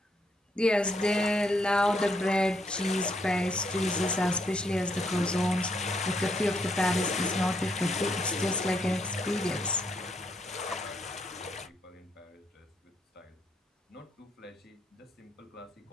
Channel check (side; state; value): both; normal; correlation 0.75